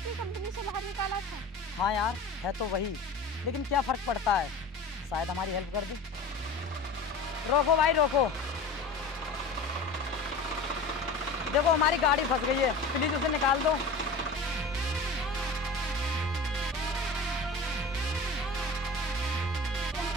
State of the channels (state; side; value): quieter; right; 3.1 dB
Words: कंपनी से बाहर निकाला था। हाँ यार, है तो वही, लेकिन क्या फर्क पड़ता है, शायद हमारी हेल्प कर दे। रोको भाई रोको, देखो हमारी गाड़ी फंस गई है, प्लीज उसे निकाल दो।